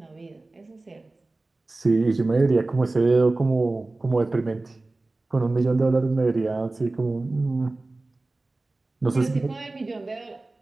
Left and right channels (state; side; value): quieter; left; 3.1 dB